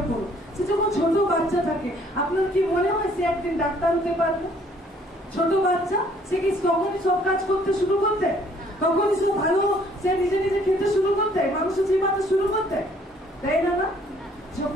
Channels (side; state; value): both; normal; correlation 0.61